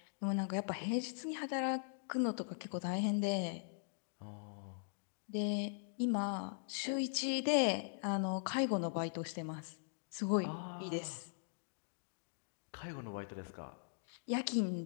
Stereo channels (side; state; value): right; silent; digital silence